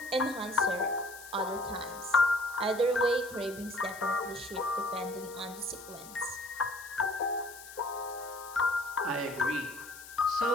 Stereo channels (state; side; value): noise; left; hiss, 16 dB below the sound